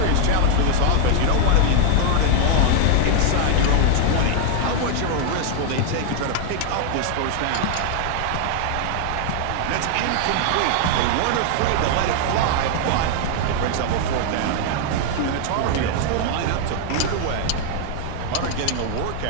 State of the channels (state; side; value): different; both; correlation 0.00